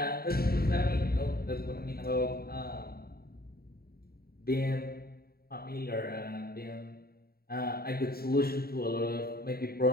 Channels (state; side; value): late; right; 0.44 ms